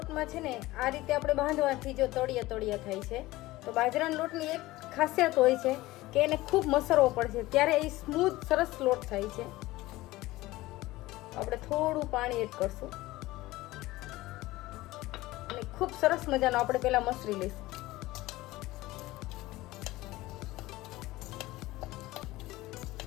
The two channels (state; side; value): quieter; right; 18.3 dB